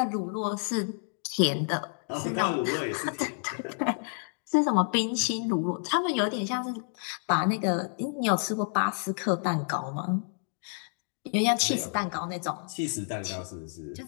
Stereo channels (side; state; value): right; silent; 58 dB below the other